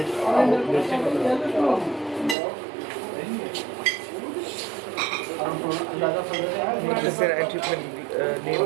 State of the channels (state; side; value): drops out; left; at 2.4 s